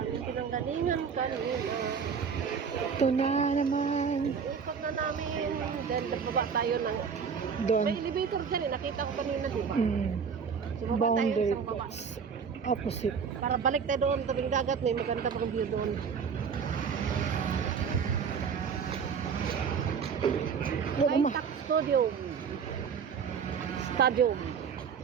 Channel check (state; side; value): quieter; left; 6.4 dB